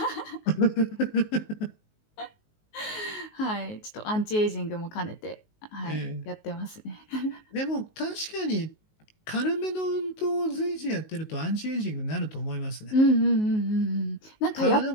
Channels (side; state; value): right; late; 19 ms